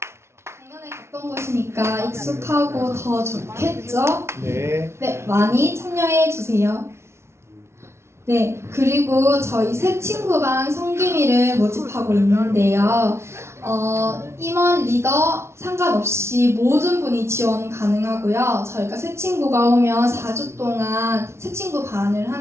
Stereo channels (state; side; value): late; left; 0.13 ms